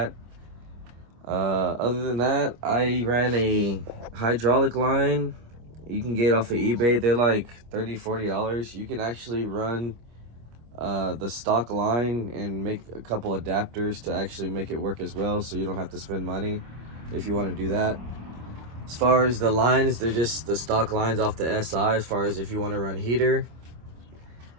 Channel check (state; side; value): late; left; 25 ms